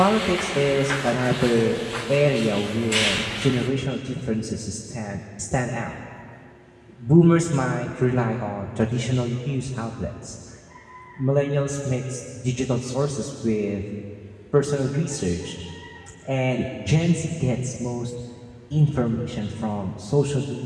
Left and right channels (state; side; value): identical; both; correlation 1.00